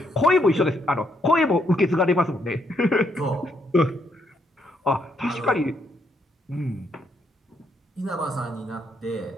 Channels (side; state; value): both; normal; correlation 0.74